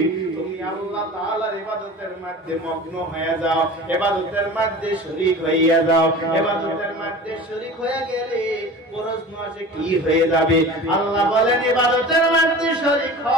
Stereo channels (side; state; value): both; normal; correlation 0.37